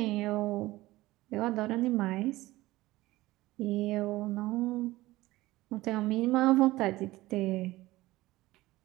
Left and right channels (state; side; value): quieter; left; 18.3 dB